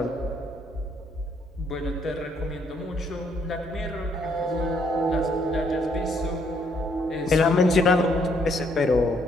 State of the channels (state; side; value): normal; both; correlation 0.70